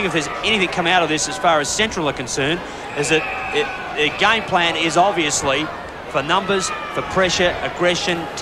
if there's anything come out of this as far as Central are concerned, is that the game plan is obviously for numbers, for pressure, aggression,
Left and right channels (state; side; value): identical; both; correlation 1.00